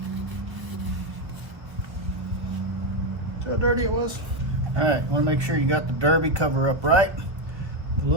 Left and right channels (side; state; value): left; late; 1.3 ms